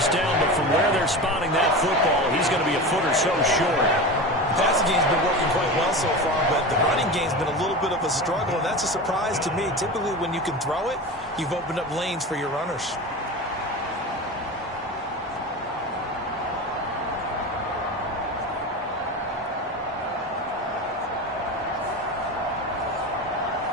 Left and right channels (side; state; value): both; normal; correlation 0.27